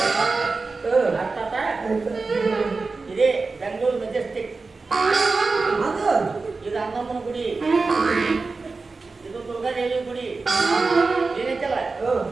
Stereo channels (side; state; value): left; quieter; 4.0 dB